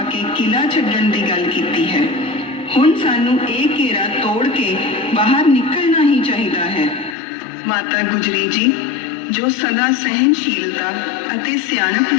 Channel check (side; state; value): right; drops out; at 7.2 s